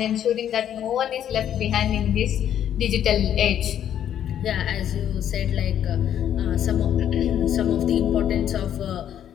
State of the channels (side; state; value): right; quieter; 10.1 dB